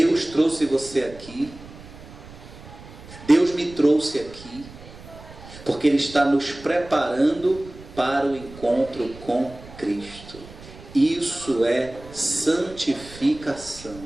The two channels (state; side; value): noise; right; rumble, 18 dB below the sound